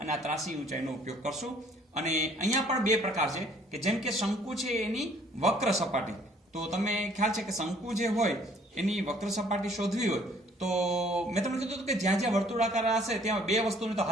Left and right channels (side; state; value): both; normal; correlation 0.59